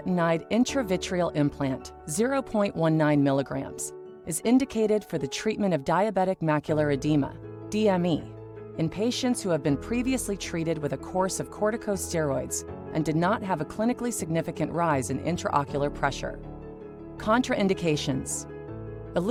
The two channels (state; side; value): identical; both; correlation 1.00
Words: intravitreal implant, 0.19 milligrams, is indicated for the treatment of diabetic macular edema, DME, in patients who have been previously treated with a course of corticosteroids and did not have a clinically significant rise in intraocular pressure. Contraindications: